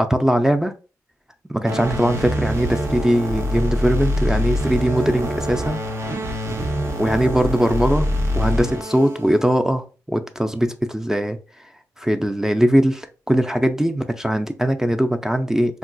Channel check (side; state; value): both; normal; correlation 0.93